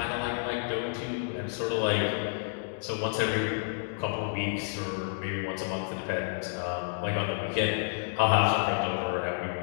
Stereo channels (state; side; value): silent; right; digital silence